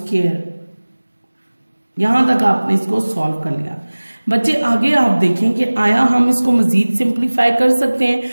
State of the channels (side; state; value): both; inverted; correlation -1.00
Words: यहां तक आपने इसको सॉल्व कर लिया। बच्चे आगे आप देखें कि आया हम इसको मजीद सिंप्लीफाई कर सकते हैं,